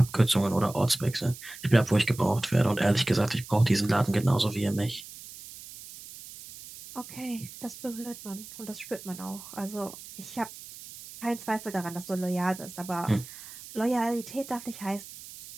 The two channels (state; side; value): noise; right; hiss, 15 dB below the sound